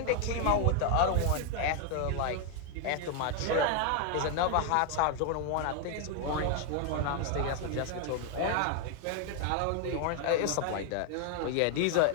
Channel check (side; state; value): both; different; correlation 0.00